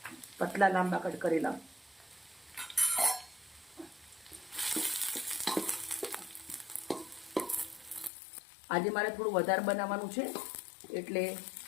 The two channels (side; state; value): right; drops out; at 8.1 s